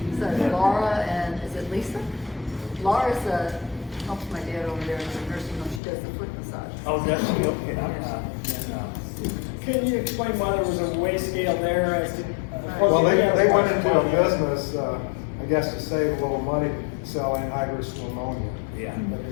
So Laura and, is it Lisa? Laura's, helps my dad over there in the nursing home. She does the foot massage. Oh, that's okay. Can you explain why there was a weigh scale there as to? Well, they went into a business, I guess to save a little money, selling anhydrous ammonia. Yeah.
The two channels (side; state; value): right; drops out; at 5.8 s